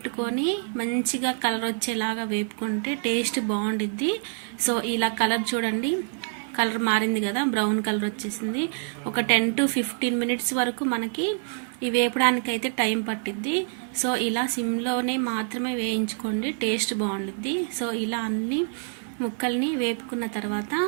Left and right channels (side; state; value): left; silent; 57 dB below the other